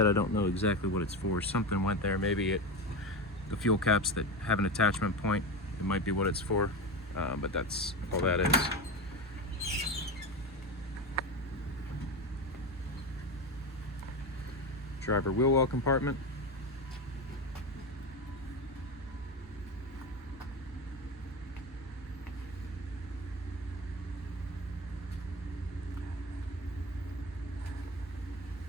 I don't know exactly what it's for. Something went there. Maybe the fuel caps that have an attachment point, it might be what it's for, but that's all that is. Driver wheel well compartment.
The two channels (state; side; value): normal; both; correlation 0.20